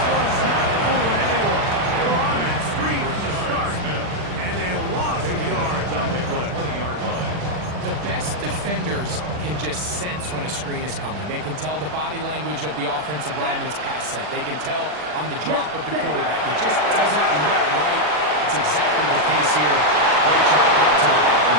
one's not fooling anyone. They were on that screen from the start, and a loss of yards on the play. 20-yard line. The best defenders can just sense when a screen is coming. They can tell the body language of the offensive lineman's pass set. They can tell on the drop of the quarterback. It just doesn't look right. It's exactly the case here. Great job getting to the ball and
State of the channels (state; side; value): late; left; 40 ms